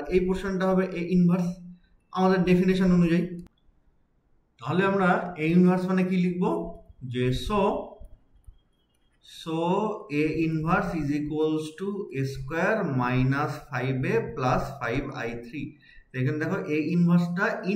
এই পোর্শনটা হবে এ ইনভার্স আমাদের ডেফিনেশন অনুযায়ী, তাহলে আমরা এ ইনভার্স মানে কি লিখবো, যে so a inverse is equals to a square -5a plus 5i3। এখানে দেখো a ইনভার্সটা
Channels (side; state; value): both; identical; correlation 1.00